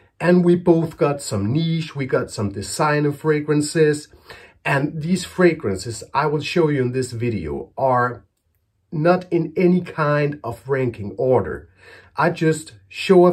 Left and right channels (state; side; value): identical; both; correlation 1.00